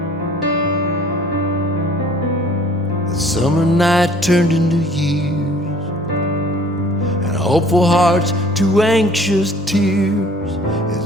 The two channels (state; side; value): normal; both; correlation 0.53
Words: The summer night turned into years, and hopeful hearts to anxious tears,